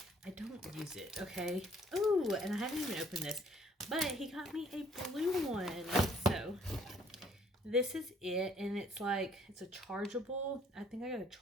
don't use it, okay? Oh, and I haven't even opened this. But he got me a blue one. So this is it. And it's like, it's a chargeable. I think I gotta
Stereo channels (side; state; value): both; normal; correlation 0.61